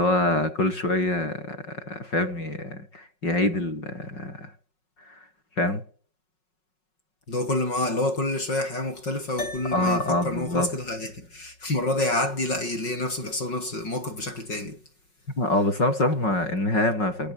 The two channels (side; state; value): right; late; 5.4 ms